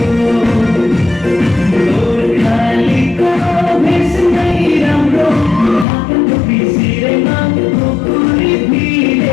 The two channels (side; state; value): right; drops out; at 5.9 s